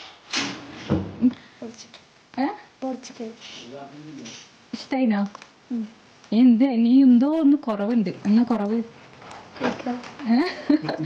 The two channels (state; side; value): identical; both; correlation 1.00